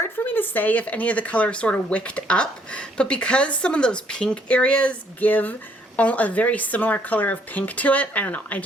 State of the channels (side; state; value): both; normal; correlation 0.67